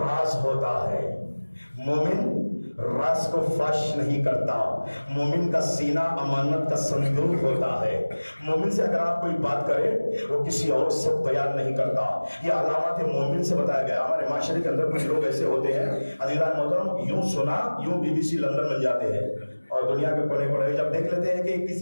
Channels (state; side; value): inverted; both; correlation -1.00